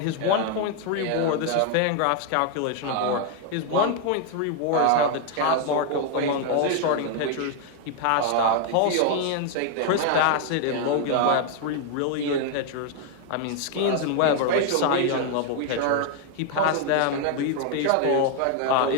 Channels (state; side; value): different; both; correlation 0.00